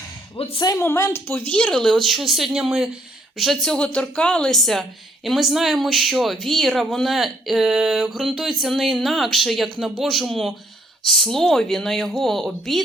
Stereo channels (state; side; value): normal; both; correlation 0.67